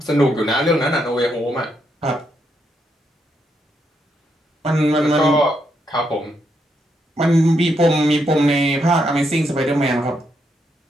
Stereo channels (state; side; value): normal; both; correlation 0.79